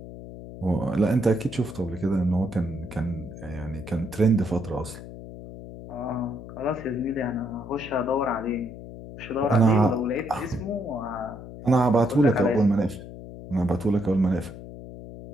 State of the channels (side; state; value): left; noise; hum, 13 dB below the sound